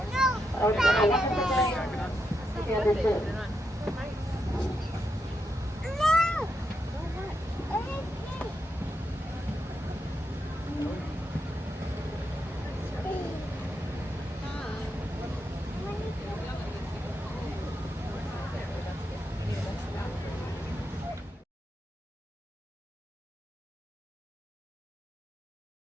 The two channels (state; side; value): normal; both; correlation 0.83